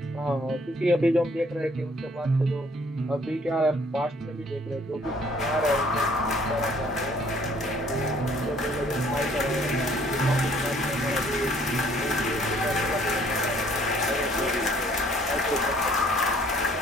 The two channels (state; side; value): normal; both; correlation 0.60